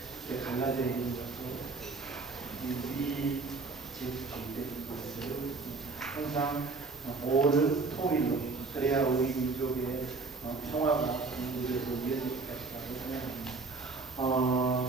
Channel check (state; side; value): quieter; left; 4.0 dB